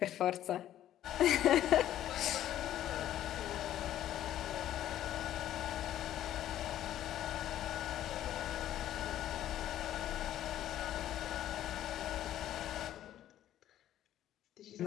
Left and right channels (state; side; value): quieter; right; 12.2 dB